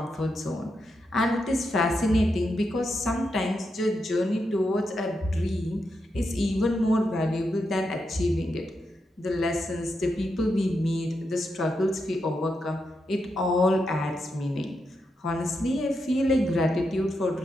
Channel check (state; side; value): normal; both; correlation 0.85